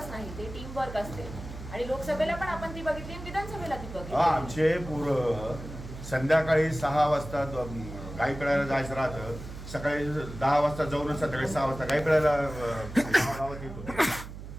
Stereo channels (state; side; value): noise; right; hum, 11 dB below the sound